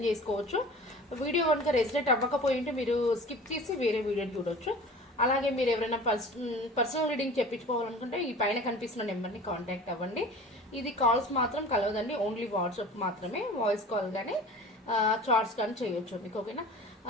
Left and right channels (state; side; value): normal; both; correlation 0.40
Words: చేసుకోవచ్చు. వీడియో కనుక రెసిడెంట్ అవ్వకపోయి ఉంటే మీరు స్కిప్ చేసి వేరే వీడియోని చూడొచ్చు. అలాగే మీరు ఎవరైనా పర్సనల్ రీడింగ్ చెప్పించుకోవాలనుకుంటే ఈ పైన కనిపిస్తున్న నెంబర్ని కాంటాక్ట్ అవ్వండి. ఇది కాల్స్ మాత్రం కలవదండి, ఓన్లీ వాట్సాప్ మాత్రమే. వాయిస్ కాల్ కానీ చార్ట్స్ కానీ చేయొచ్చు మీకు. ఓకేనా,